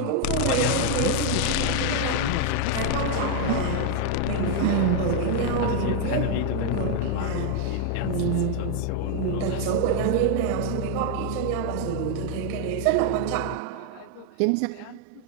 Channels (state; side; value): different; both; correlation 0.00